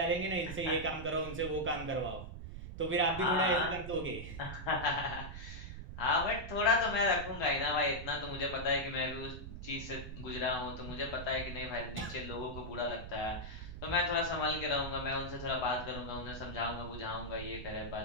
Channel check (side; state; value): right; noise; rumble, 9 dB below the sound